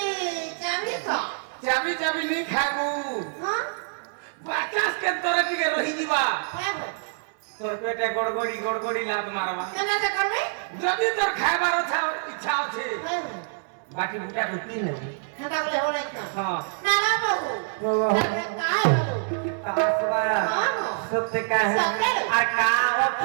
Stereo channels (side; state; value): left; silent; 61 dB below the other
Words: का चाबी चाबी नहीं खागू हां बाचास के तोरा टिके रही जीवा है तोर पेटे गड़गड़ी लात मारवा केना से करबे जदी तोर खाइबार इच्छा আছে है बाकी बुटा रुटी नहीं हटा बोले हो नहीं हां ना ना बाबू तारपरे काय बाबू आसवा हां सत्य का है सत्य आ का